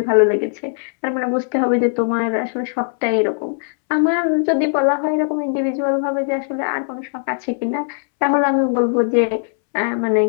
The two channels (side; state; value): right; silent; 66 dB below the other